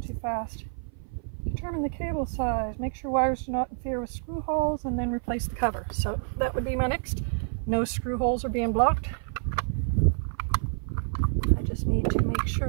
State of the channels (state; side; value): silent; left; 55 dB below the other